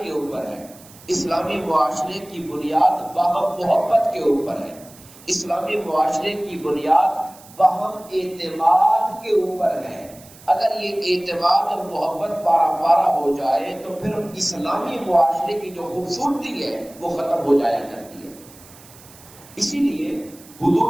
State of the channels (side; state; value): right; noise; hiss, 22 dB below the sound